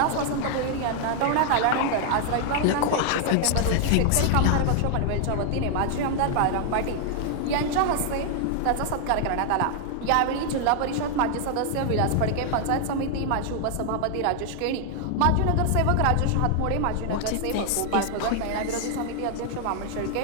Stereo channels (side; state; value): both; different; correlation 0.00